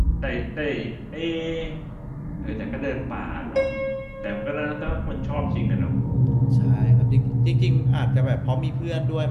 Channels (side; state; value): both; identical; correlation 1.00